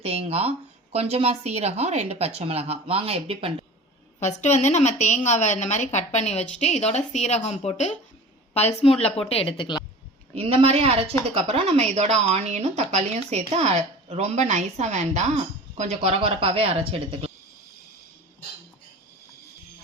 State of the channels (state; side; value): normal; both; correlation 0.38